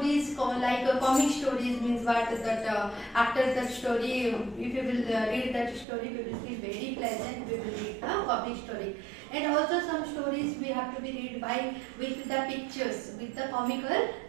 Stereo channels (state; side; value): drops out; left; at 5.9 s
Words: like comic stories means what that after that story, if you will read that story, we will feel very pleasant. We will read the comic story, and also some stories we have to be read by with the pictures, with the comical